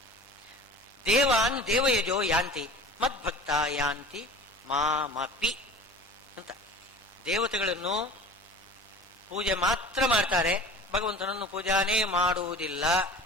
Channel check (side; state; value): both; normal; correlation 0.41